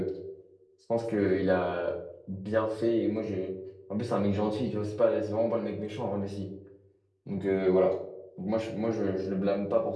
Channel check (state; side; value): identical; both; correlation 1.00